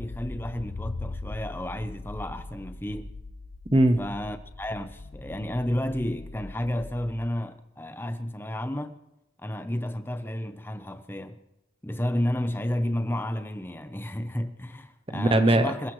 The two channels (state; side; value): normal; both; correlation 0.87